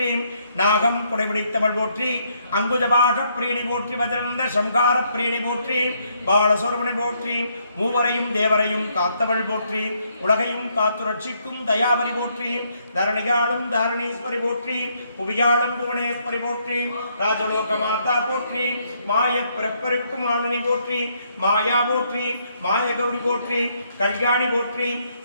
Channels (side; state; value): both; inverted; correlation -0.72